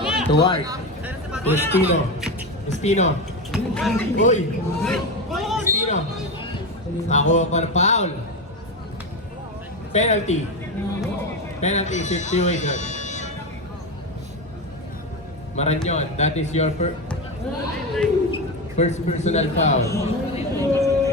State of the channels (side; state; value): both; normal; correlation 0.17